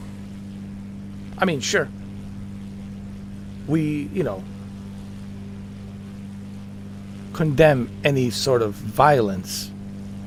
I mean, sure. We, condemn any sort of violence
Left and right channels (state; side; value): identical; both; correlation 1.00